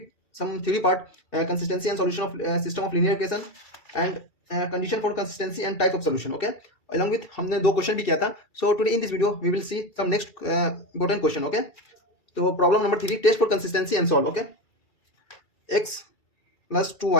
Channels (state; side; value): late; right; 2.3 ms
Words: some theory part, consistency and solution of system of linear equation and condition for consistency and type of solution. Okay, along with हमने दो क्वेश्चन भी किया था. So today in this video we will see some next important question. Okay, तो problem number 3, test for consistency and solve. Okay, x plus